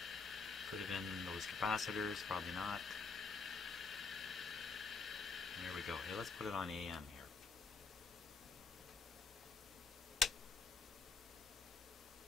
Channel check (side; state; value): right; quieter; 4.8 dB